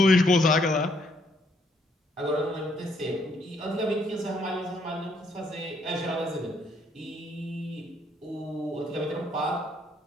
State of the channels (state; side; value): normal; both; correlation 0.70